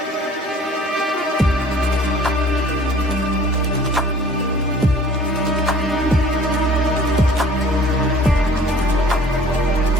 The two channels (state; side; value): normal; both; correlation 0.50